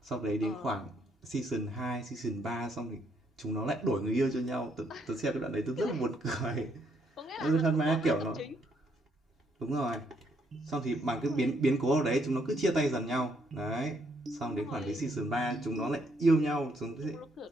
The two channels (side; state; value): both; normal; correlation 0.72